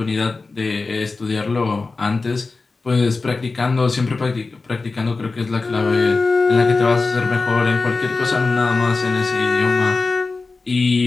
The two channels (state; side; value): quieter; right; 3.9 dB